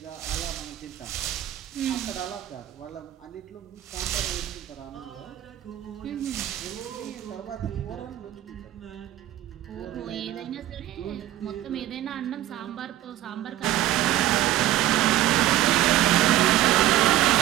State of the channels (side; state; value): left; quieter; 13.6 dB